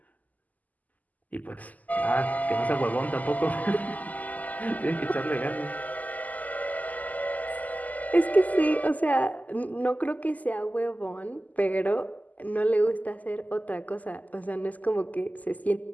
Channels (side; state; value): right; late; 0.078 ms